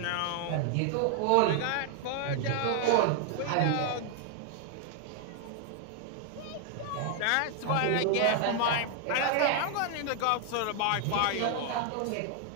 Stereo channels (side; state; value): both; different; correlation 0.00